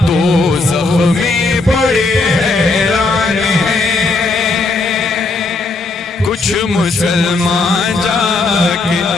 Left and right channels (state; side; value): quieter; right; 3.4 dB